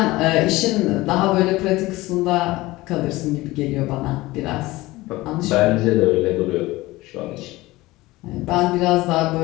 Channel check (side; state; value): right; quieter; 19.4 dB